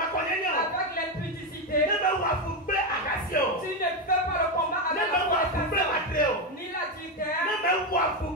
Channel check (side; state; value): both; normal; correlation 0.10